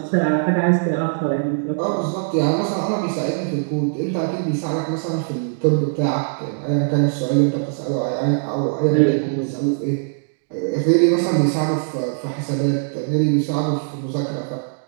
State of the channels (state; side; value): silent; left; digital silence